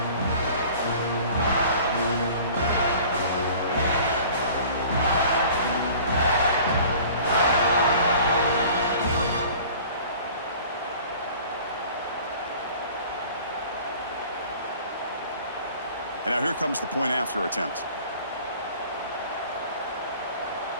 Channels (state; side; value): inverted; both; correlation -0.47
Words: And now here comes the point after attempt.